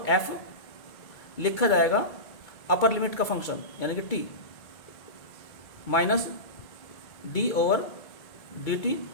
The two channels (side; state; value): right; late; 2.3 ms